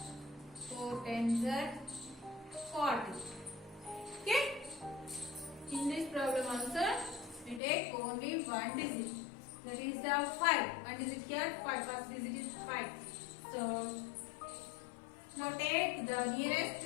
4 tens are 40. Okay? In this problem also, we take only one digit. That is the 5. One digit here, 5. First digit is 5. So, now take the nearest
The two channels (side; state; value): right; drops out; at 7.6 s